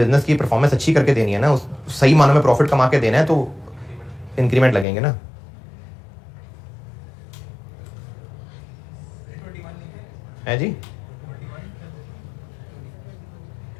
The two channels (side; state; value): right; drops out; at 4.9 s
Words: की परफॉर्मेंस अच्छी करके देनी है ना, उस सही मानों में प्रॉफिट कमा के देना है, तो इंक्रीमेंट लगेंगे ना। है जी,